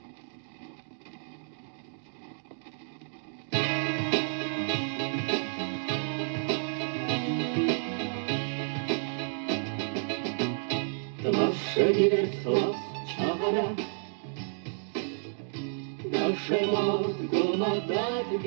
Nasze wiersła czara, nasze motko madat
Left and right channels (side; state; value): left; silent; digital silence